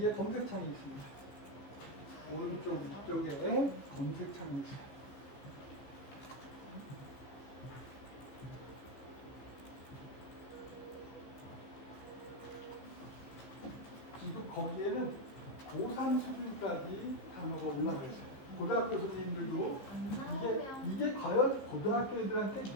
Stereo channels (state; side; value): late; right; 15 ms